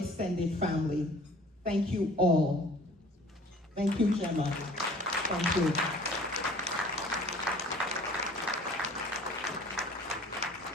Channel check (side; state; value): both; normal; correlation 0.49